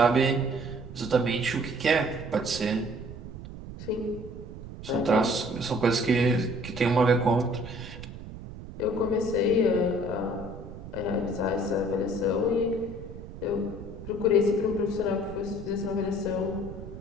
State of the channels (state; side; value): noise; right; rumble, 12 dB below the sound